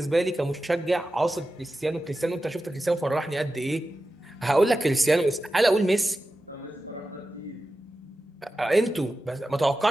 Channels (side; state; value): both; normal; correlation 0.93